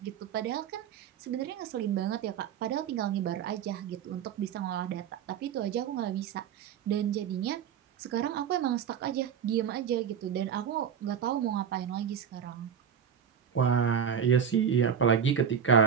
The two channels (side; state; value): left; quieter; 8.0 dB